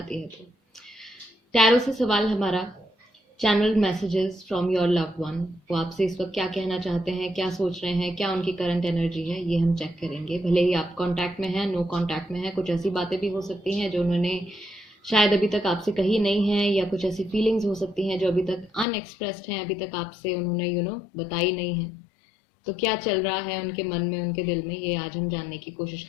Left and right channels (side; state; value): right; drops out; at 18.9 s